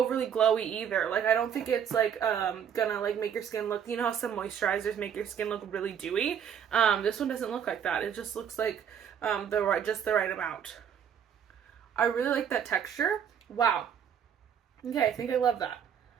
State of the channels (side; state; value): left; quieter; 8.3 dB